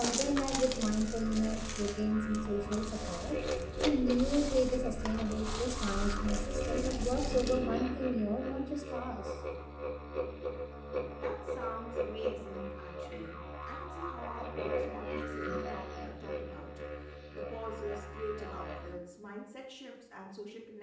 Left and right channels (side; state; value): both; identical; correlation 1.00